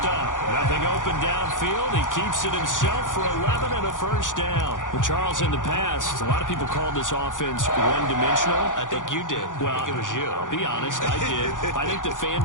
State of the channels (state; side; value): late; right; 0.87 ms